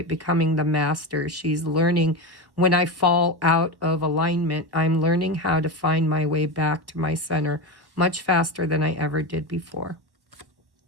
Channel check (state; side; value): late; left; 1.1 ms